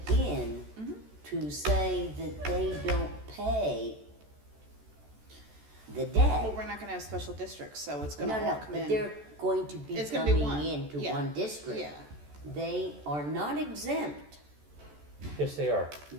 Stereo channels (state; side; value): late; left; 14 ms